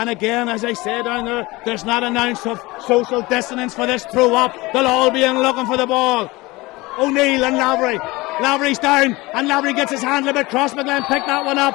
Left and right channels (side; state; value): right; quieter; 21.8 dB